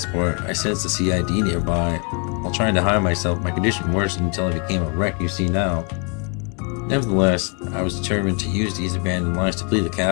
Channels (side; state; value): right; quieter; 36.0 dB